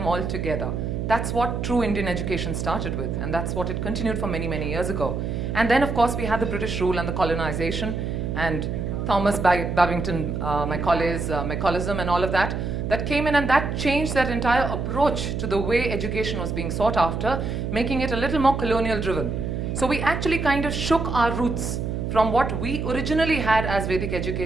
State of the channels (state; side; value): noise; right; hum, 3 dB below the sound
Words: all together. That's what true Indian education started with, and that's what it continued for many years ago. And then, of course, we had the British rule and the colonization, and Thomas Babington, Macaulay,ism and all of that, that came in, and that changed that entire approach to the way education was being sought after, making it a little more colonial driven. So we actually kind of shook our roots from what we originally had as Vedic